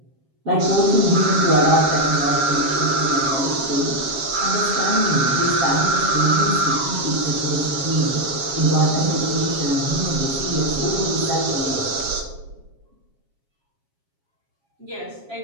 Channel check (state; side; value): late; left; 7.3 ms